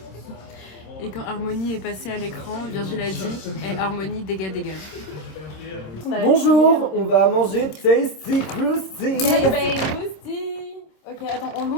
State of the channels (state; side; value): late; right; 26 ms